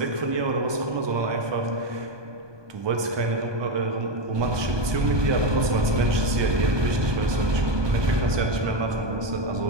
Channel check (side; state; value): left; late; 1.2 ms